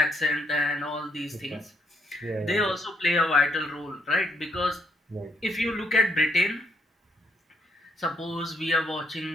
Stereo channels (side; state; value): both; normal; correlation 0.74